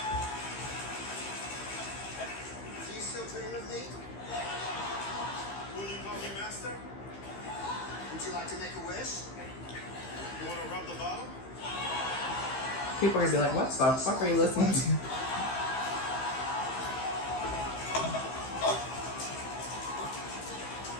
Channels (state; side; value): late; right; 15 ms